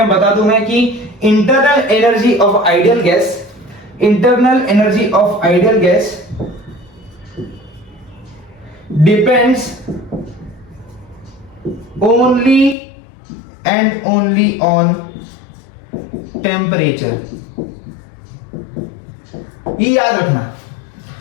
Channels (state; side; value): drops out; right; at 12.8 s